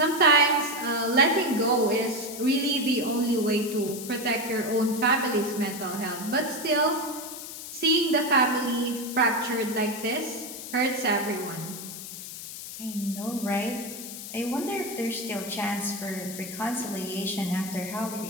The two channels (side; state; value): left; noise; hiss, 10 dB below the sound